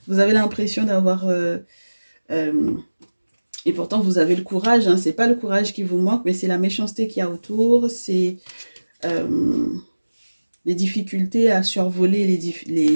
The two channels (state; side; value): inverted; both; correlation -1.00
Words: Vous avez l'impression d'avoir... euh, et pourtant, vous avez le courage, hein. C'est pas le courage qui vous manque, mais c'est la méchanceté qu'il y a autour. C'est... les difficultés à survoler